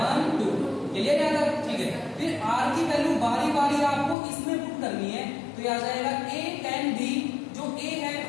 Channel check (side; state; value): right; drops out; at 4.2 s